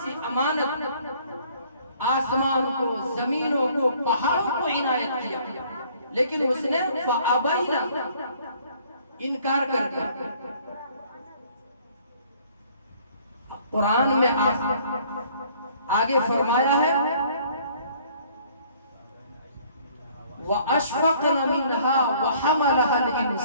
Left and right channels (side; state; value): both; inverted; correlation -0.58